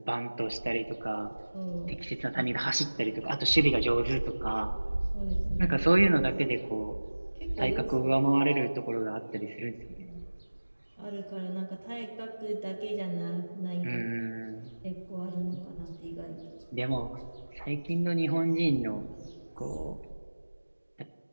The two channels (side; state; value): both; inverted; correlation -1.00